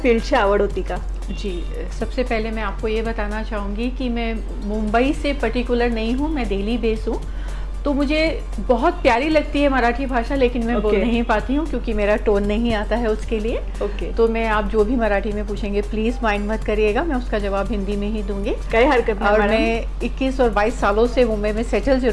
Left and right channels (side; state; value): both; identical; correlation 1.00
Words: फील्डची आवड होती का? जी, सबसे पहले मैं आपको ये बताना चाहूँगी कि मैं मुंबई से पर्टिकुलर नहीं हूँ, मैं दिल्ली बेस हूँ। तो मुझे बहुत प्यारी लगती है मराठी भाषा, लेकिन मैं बोल नहीं पाती हूँ क्योंकि मेरा टोन नहीं आता है उसके लिए। तो मैं आप जो भी मराठी में पूछेंगे प्लीज़ माइंड मत करिएगा, मैं उसका जवाब हिंदी में ही दूंगी। कोई हरकत नहीं। और मैं 21 और 22 सालों से मुंबई में सेटल